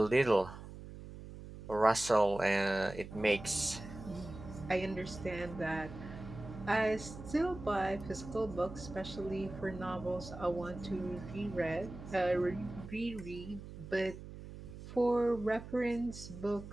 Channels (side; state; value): right; noise; hum, 13 dB below the sound